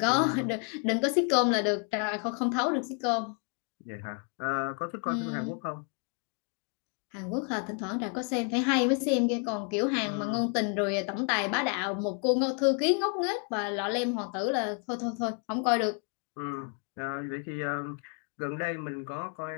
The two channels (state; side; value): quieter; right; 39.6 dB